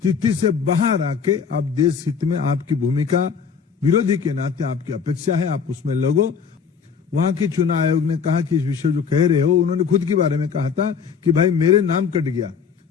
से बाहर आके आप देश हित में आपकी भूमिका विरोधी के नाते आपकी अपेक्षा है, आप उसमें लगो। वहां के चुनाव आयोग ने कहा कि इस विषय जो कह रहे हो, उन्होंने खुद के बारे में कहा था कि भाई मेरे नाम कट गया।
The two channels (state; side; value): quieter; right; 6.3 dB